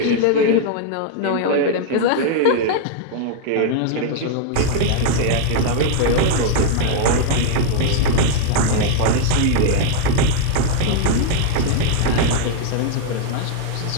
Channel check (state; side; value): different; both; correlation 0.00